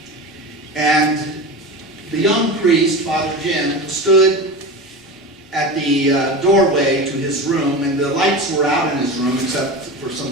And the young priest, Father Jim, stood at the doorway to his room, and the lights were out in his room except for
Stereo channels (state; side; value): normal; both; correlation 0.27